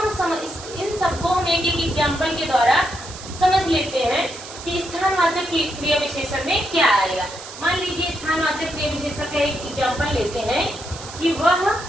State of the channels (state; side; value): noise; right; hiss, 13 dB below the sound